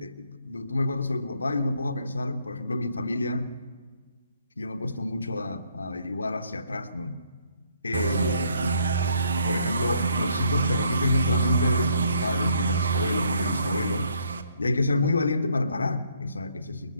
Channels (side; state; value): both; inverted; correlation -0.68